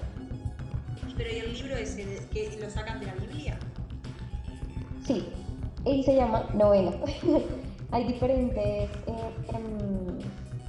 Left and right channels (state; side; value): identical; both; correlation 1.00